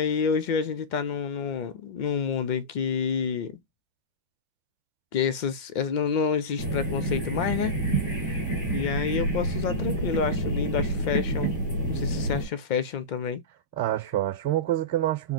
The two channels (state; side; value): late; right; 2.2 ms